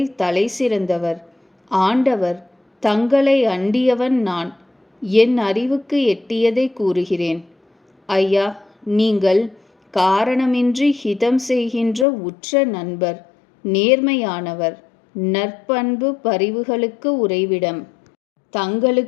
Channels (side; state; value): right; drops out; at 12.1 s